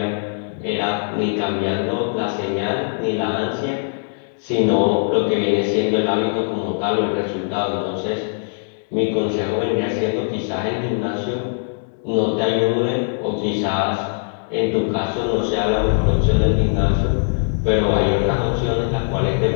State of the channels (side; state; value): right; silent; digital silence